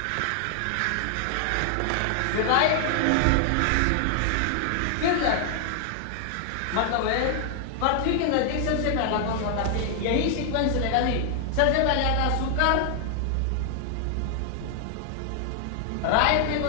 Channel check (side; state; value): both; different; correlation 0.00